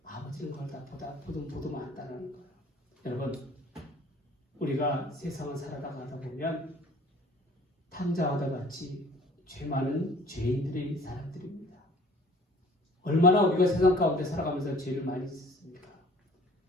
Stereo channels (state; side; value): normal; both; correlation 0.50